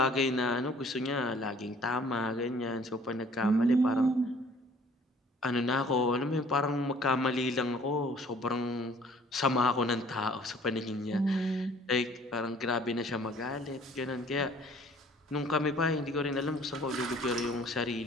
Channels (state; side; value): normal; both; correlation 0.54